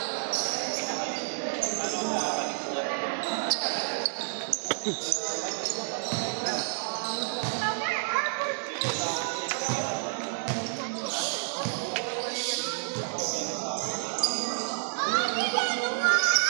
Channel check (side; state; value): left; silent; digital silence